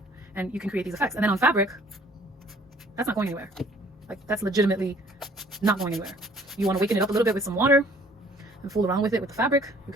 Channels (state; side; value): normal; both; correlation 0.56